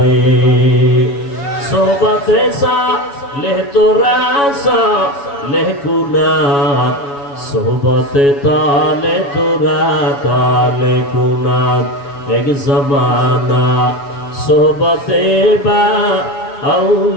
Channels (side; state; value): right; late; 7.1 ms